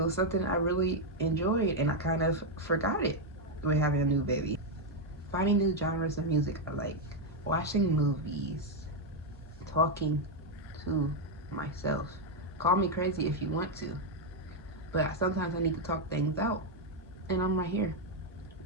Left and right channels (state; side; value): normal; both; correlation 0.02